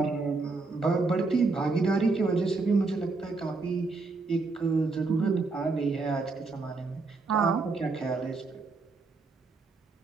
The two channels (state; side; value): quieter; left; 3.9 dB